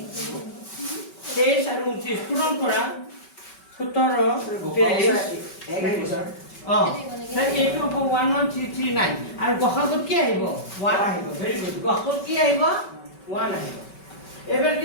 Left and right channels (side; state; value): right; late; 5.3 ms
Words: 23 আৰু 29 পূৰণ কৰা 17 23 এক আহিব স্যাৰ স্যাৰ এইটো হ'ব 11339 আৰু গসাগুত কি আহিব 1 আহিব ভেৰি গুড গসাগুত কি আহিব 1 আহিব এবাৰ